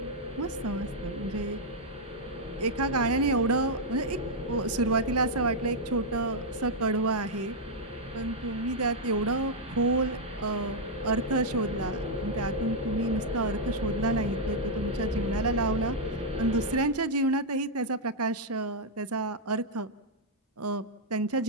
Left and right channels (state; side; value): normal; both; correlation -0.04